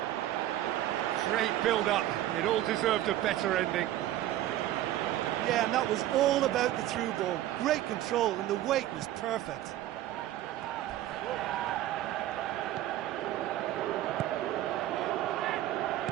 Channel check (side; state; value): left; quieter; 13.7 dB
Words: Great build-up. It all deserved a better ending. Yeah, and that was all about the through ball. Great control, and the weight was perfect.